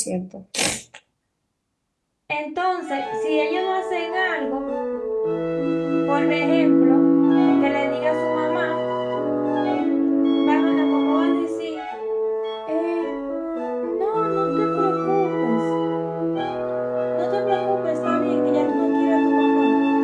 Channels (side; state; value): both; identical; correlation 1.00